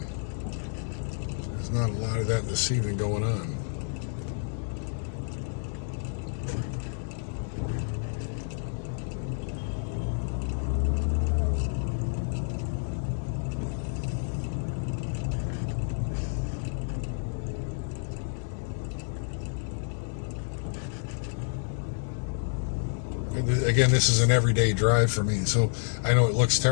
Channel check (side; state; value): right; silent; digital silence